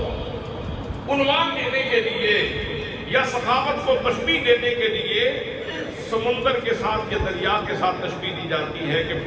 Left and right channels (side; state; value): both; identical; correlation 1.00